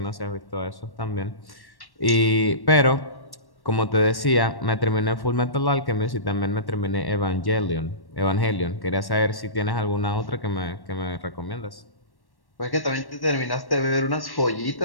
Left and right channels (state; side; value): late; right; 1.1 ms